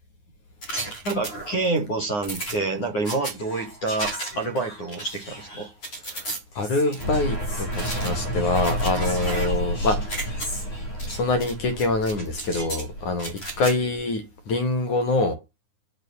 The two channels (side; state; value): right; late; 9.7 ms